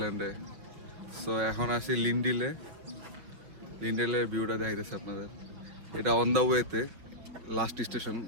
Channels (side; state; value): left; late; 5.6 ms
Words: তো এখন আছি লিন্ডেলের ভিউটা দেখাইতেছে আপনাদের। এটা অন দ্য ওয়েতে লাস্ট স্টেশন,